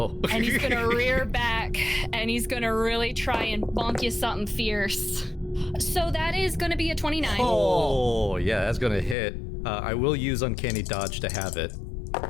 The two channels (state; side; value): drops out; right; at 9.2 s